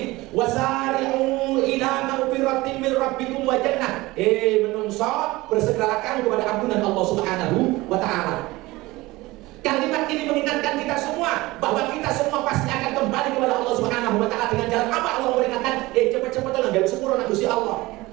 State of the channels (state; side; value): quieter; left; 20.2 dB